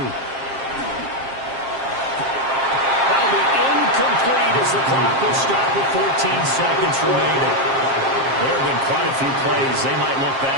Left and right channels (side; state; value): left; late; 7.5 ms